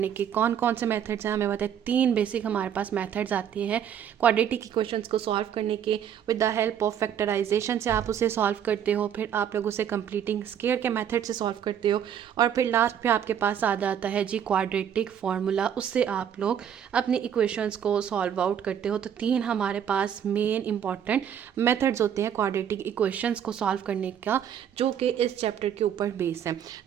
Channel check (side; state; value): left; quieter; 9.0 dB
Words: के कौन कौन से मेथड्स हैं हमें बताए। 3 बेसिक हमारे पास मेथड्स आती हैं क्वाड्रेटिक इक्वेशंस को सॉल्व करने के। With the help of factorization से आप उसे सॉल्व करते हो, फिर आप लोग उसे कंप्लीटिंग स्क्वायर के मेथड से सॉल्व करते हो, और फिर लास्ट पे आपके पास आ जाता है जी क्वाड्रेटिक फार्मूला, उससे आप लोग अपनी इक्वेशंस को सॉल्व आउट करते हो। तो 3 हमारे पास मेन इंपॉर्टेंट मेथड्स होते हैं क्वाड्रेटिक इक्वेशंस को सॉल्व करने का, जो कि इस चैप्टर के ऊपर बेस है।